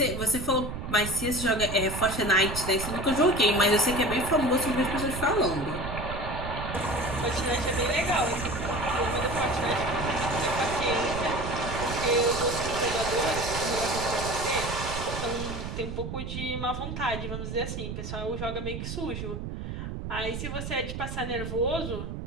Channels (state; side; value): noise; right; rumble, 6 dB below the sound